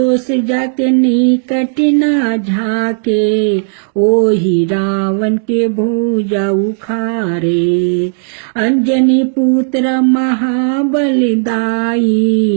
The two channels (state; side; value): silent; left; digital silence